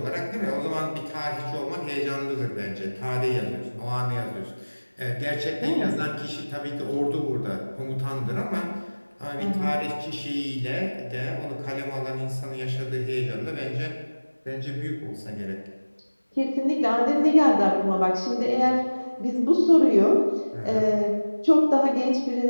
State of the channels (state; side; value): inverted; both; correlation -1.00